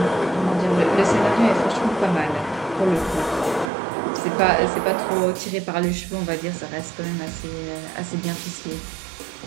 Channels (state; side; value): drops out; left; at 3.7 s